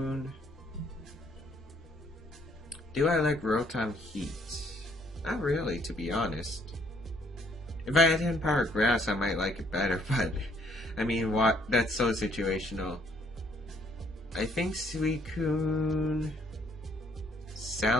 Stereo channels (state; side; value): normal; both; correlation 0.65